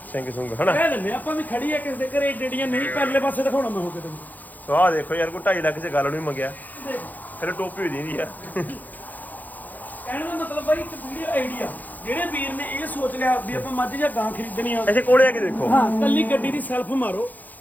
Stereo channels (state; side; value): late; right; 0.083 ms